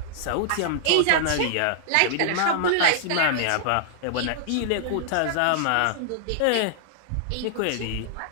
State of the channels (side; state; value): both; different; correlation -0.01